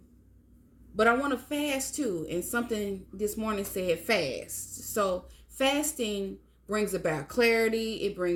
but I want to fast too. And something this morning said fast. So fasting brings about clarity. It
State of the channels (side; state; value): both; identical; correlation 1.00